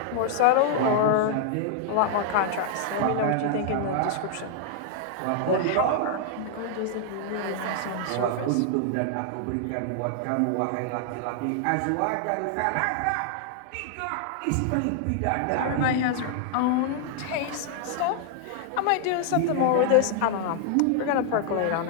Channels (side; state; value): both; different; correlation 0.00